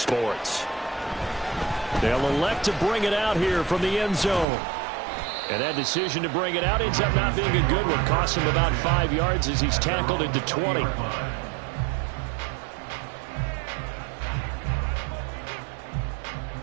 They'll elect to bring it out here from the end zone. And that decision to bring it out ends up not being a good one. Costs him about 5 yards as he's tackled into 20.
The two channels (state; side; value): drops out; left; at 4.5 s